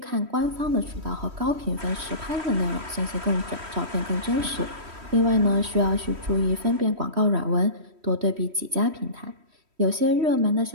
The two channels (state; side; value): late; left; 3.1 ms